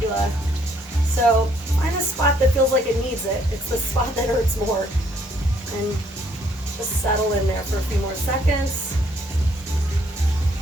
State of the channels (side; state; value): both; normal; correlation 0.67